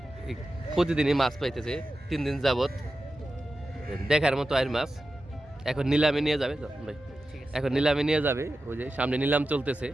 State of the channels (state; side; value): normal; both; correlation 0.92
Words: প্রতিদিনই মাছ পাইতেছে 3 দিন যাবত। দেখার মতো আয়ের মাছ। এখন নিলামে নিয়ে যাবে ভাই, এখন নিলামে নিয়ে যাবে। ওই যে সামনে নিলাম চলতেছে,